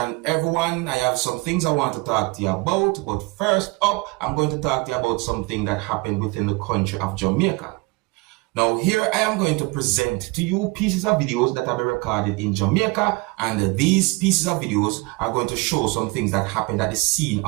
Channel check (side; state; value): left; quieter; 25.9 dB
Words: everyone. I have some things I want to talk to you about, but first up, I'm going to talk to you about something that happened within the country of Jamaica. Now, here I am going to present to you pieces of videos that have been recorded in Jamaica, and these pieces of videos are going to show some things that happened at the scene